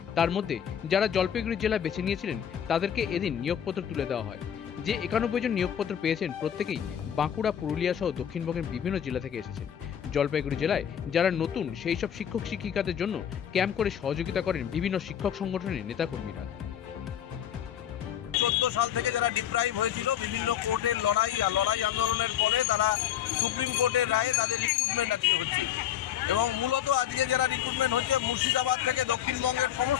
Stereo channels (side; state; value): right; quieter; 9.8 dB